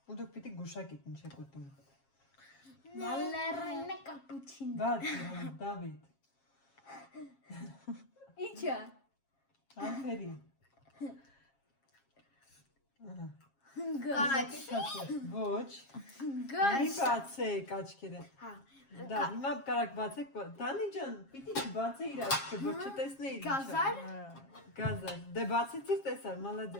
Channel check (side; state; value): right; late; 7.4 ms